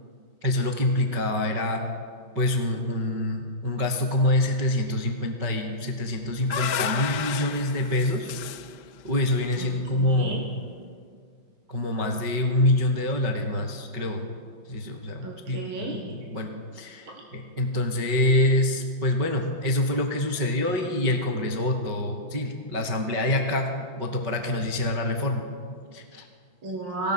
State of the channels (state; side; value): late; left; 5.4 ms